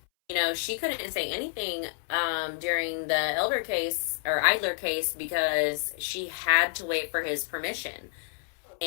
she couldn't say anything during the Idler case because she had to wait for his permission.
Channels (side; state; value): right; silent; 59 dB below the other